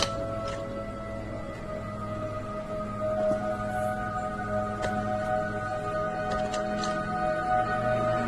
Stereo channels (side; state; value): both; identical; correlation 1.00